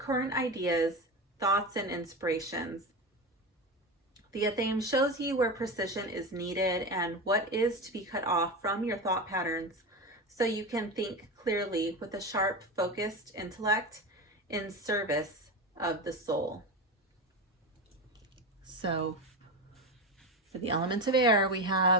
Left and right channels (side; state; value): both; normal; correlation 0.21